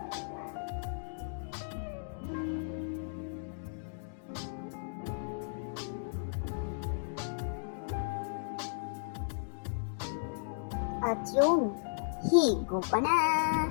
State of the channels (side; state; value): right; silent; digital silence